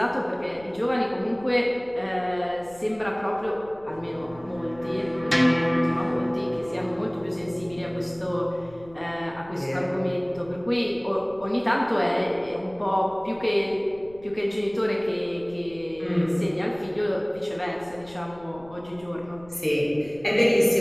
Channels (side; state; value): left; noise; rumble, 23 dB below the sound